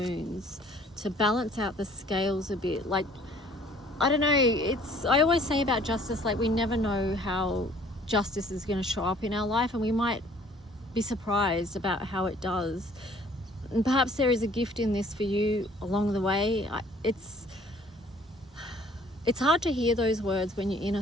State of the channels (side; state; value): both; normal; correlation 0.56